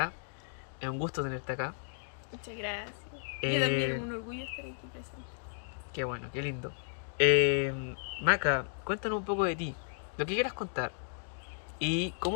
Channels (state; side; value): silent; right; digital silence